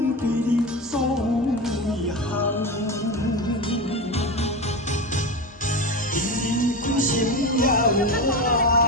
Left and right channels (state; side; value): normal; both; correlation 0.21